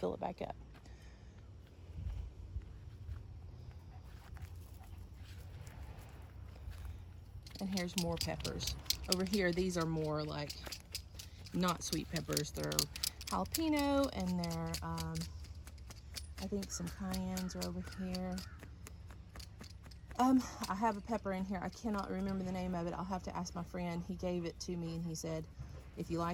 it back up. And here's more peppers. Over here, these are more like not sweet peppers. They're jalapeno, and they're, I think some cayennes are over here. I have a pepper in here. I cannot remember the name of it. I'll have to ask my friend. He gave it to me, and he said, if you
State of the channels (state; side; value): identical; both; correlation 1.00